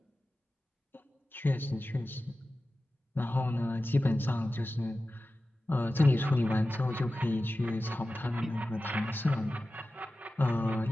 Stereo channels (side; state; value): both; normal; correlation 0.95